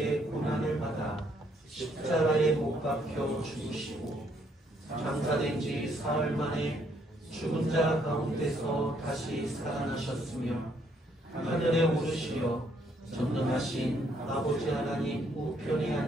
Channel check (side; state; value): both; normal; correlation 0.70